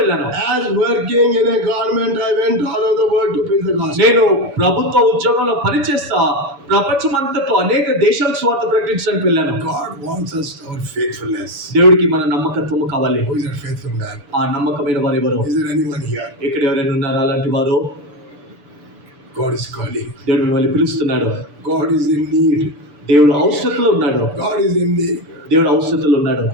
As working in a government, I went all over the world to preach the gospel. నేను ప్రభుత్వ ఉద్యోగంలో పనిచేస్తా ప్రపంచమంతట్లో అనేక దేశాలకు సువార్త ప్రకటించడానికి వెళ్ళాను. God wants us our faithfulness. దేవుడికి మన నమ్మకత్వము కావాలి. Who is that faithful man? ఆ నమ్మకమైన వారు ఎవరు? Is there anyone here? ఇక్కడ ఎవరైనా ఉన్నారా అలాంటి వారు? God is calling. దేవుడు మిమ్మల్ని పిలుస్తున్నాడు. God is in need. దేవుడు అవసరతలో ఉన్నాడు. God is in need. దేవుడు అవసరతలో ఉన్నాడు.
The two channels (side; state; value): left; late; 7.0 ms